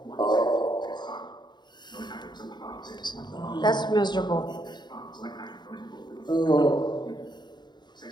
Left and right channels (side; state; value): right; late; 0.21 ms